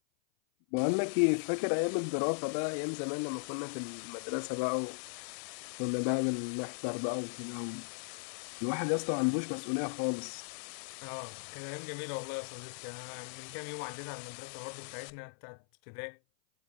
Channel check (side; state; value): right; silent; 54 dB below the other